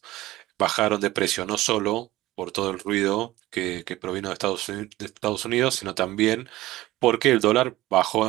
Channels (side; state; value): left; quieter; 17.2 dB